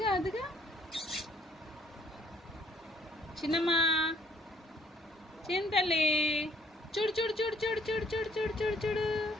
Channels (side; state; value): both; normal; correlation 0.63